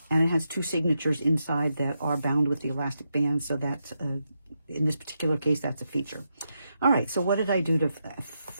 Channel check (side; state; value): both; inverted; correlation -0.85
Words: and it has two signatures inside that are bound with the elastic band, so that in this particular case, that's a feature. All right, so what did I do to